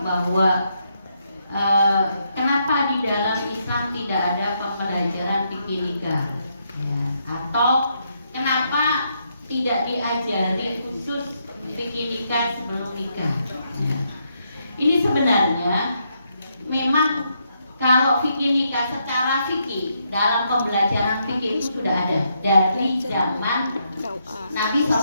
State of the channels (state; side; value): inverted; both; correlation -0.77